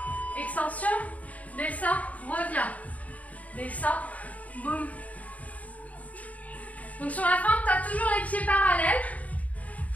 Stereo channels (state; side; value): late; right; 0.070 ms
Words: extension, descends, reviens. Descends, boum. Donc sur la feinte, tu as toujours les pieds parallèles.